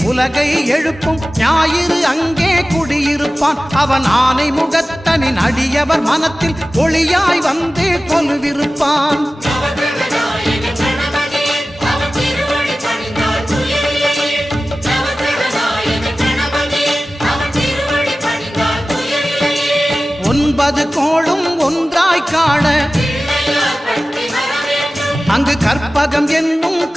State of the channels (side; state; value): both; normal; correlation 0.96